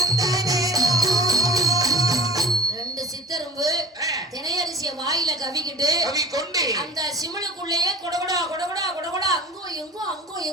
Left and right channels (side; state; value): both; normal; correlation 0.40